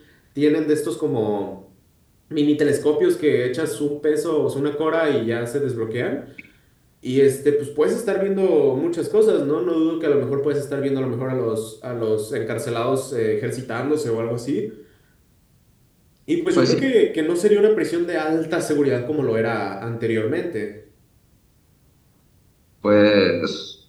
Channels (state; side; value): identical; both; correlation 1.00